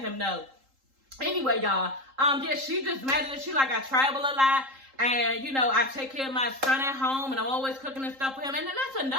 know. Anyway, y'all, yeah, she just mad at it. She like, I travel a lot, and, you know, I take care of my son at home, and I'm always cooking and stuff for him. And then that's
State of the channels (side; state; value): left; late; 3.8 ms